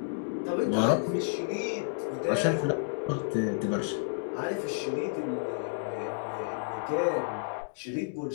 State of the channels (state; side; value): silent; right; digital silence